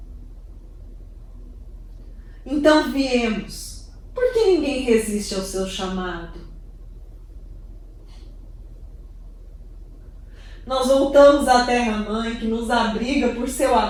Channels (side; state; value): both; identical; correlation 1.00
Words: Então viemos, porque ninguém resiste ao seu chamado. Nós voltamos à terra-mãe que nos abriga por seu